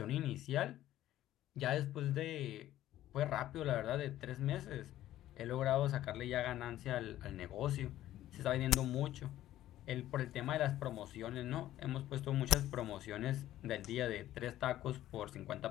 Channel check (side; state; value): right; quieter; 13.6 dB